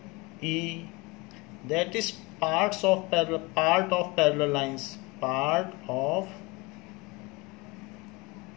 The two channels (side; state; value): right; quieter; 25.3 dB